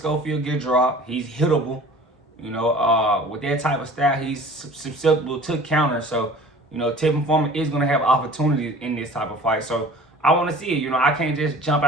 get dropped. He's hittable. You know, with that type of style, he's susceptible to counter. So, you know, Tevin Farmer is going to have opportunities in this type of fight. So, I want to see it. You know, I can't just jump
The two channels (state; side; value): normal; both; correlation 0.45